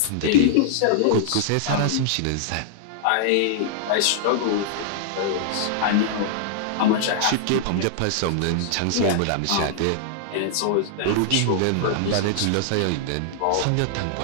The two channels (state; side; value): different; both; correlation -0.01